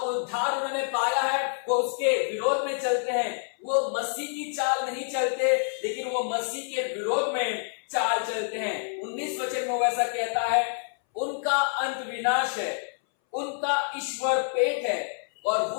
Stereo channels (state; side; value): silent; right; 59 dB below the other